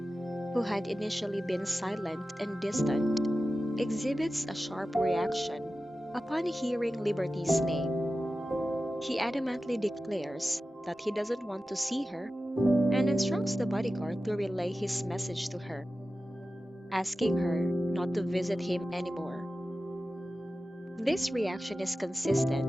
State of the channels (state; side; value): normal; both; correlation 0.94